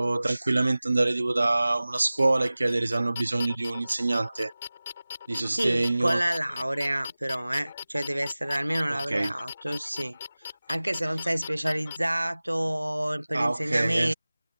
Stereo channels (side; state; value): both; inverted; correlation -0.98